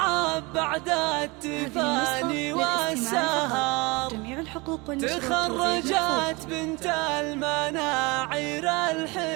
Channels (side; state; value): left; quieter; 25.8 dB